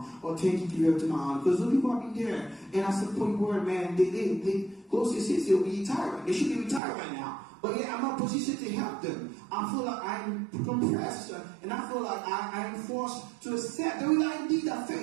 or 10K give it to my aunt, because those people are be there. And I said, point word, man, they close to 60, they'll be retired. They should be retired right now. But yet I'm not positioned to help them. I feel like I'm compressed, and I feel like I am forced to accept the reality that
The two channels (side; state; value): left; drops out; at 6.8 s